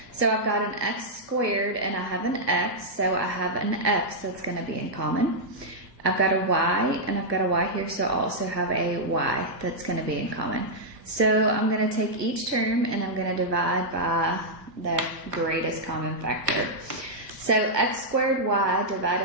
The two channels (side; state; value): left; late; 1.4 ms